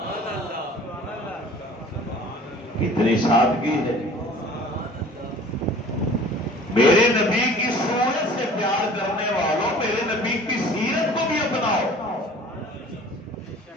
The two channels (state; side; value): normal; both; correlation 0.47